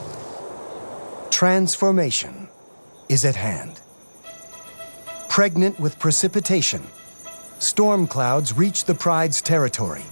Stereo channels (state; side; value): inverted; both; correlation -1.00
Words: Transformation is at hand. Pregnant with precipitation, storm clouds reach the pride's territory.